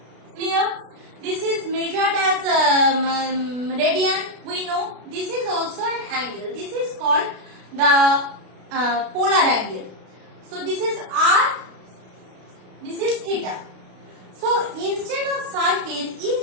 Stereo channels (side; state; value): left; late; 32 ms